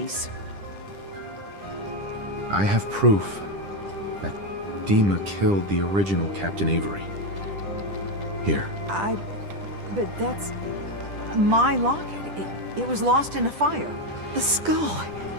I have proof that Dima killed the original Captain Avery. Here. But that's... my locket. It was lost in a fire. The skull.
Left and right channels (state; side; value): late; left; 10 ms